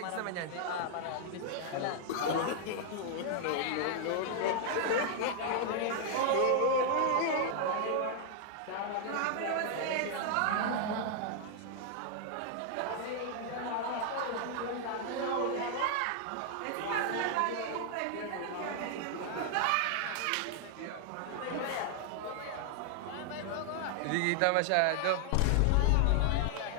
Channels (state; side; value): different; both; correlation 0.00